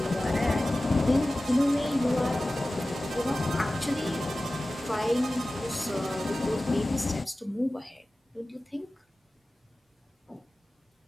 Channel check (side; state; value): both; normal; correlation 0.96